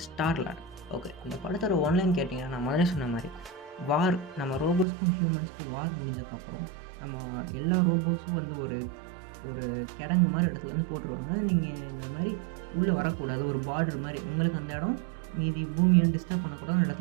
ஸ்டார்லார்ட். ஓகே, இந்த படத்தோட ஒன்லைன் கேட்டிங்கன்னா நான் முதல்ல சொன்ன மாதிரி வார், நம்ம ரோபோஸ்க்கும் ஹியூமன்ஸ்க்கும் வார் முடிஞ்சதுக்கப்புறம் நம்ம எல்லா ரோபோஸும் வந்து ஒரு கிடங்கு மாதிரி இடத்துல வந்து போட்டுருவாங்க. நீங்கள் இந்த மாதிரி உள்ளே வரக்கூடாது, ஒரு பார்டர் மாதிரி உங்களுக்கு அந்த இடம் மீதி பூமியை டிஸ்டர்ப் பண்ணக்கூடாது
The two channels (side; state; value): left; drops out; at 4.9 s